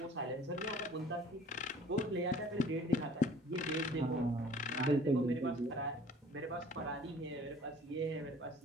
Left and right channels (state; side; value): normal; both; correlation 0.50